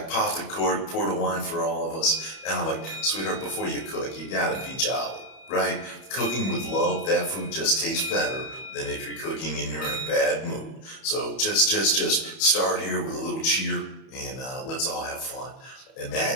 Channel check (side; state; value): right; late; 31 ms